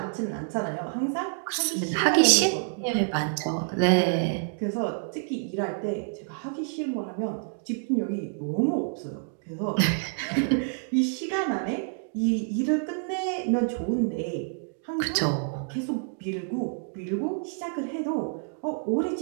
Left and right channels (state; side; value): silent; left; 59 dB below the other